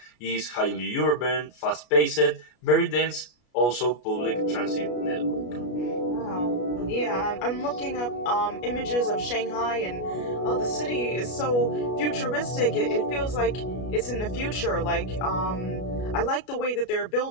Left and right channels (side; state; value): right; late; 33 ms